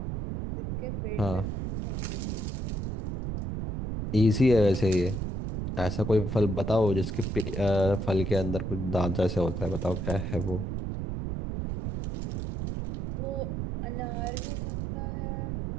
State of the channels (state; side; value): noise; right; rumble, 3 dB below the sound